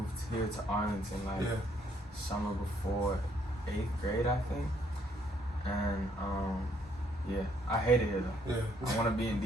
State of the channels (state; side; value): normal; both; correlation 0.69